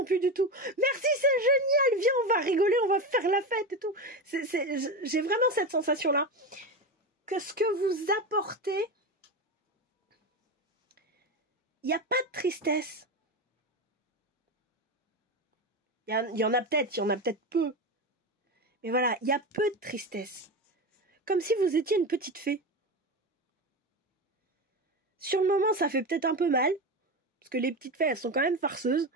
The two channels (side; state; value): both; normal; correlation 0.19